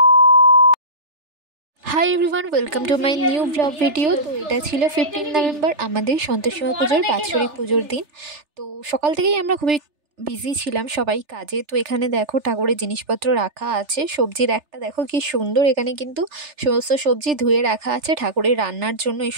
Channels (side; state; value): left; late; 3.4 ms